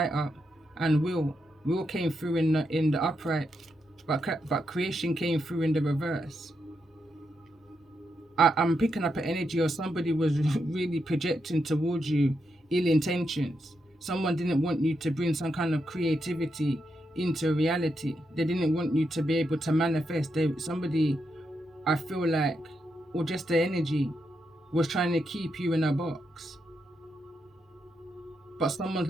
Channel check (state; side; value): normal; both; correlation 0.83